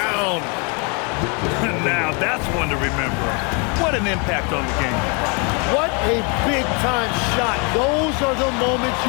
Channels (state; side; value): quieter; right; 33.8 dB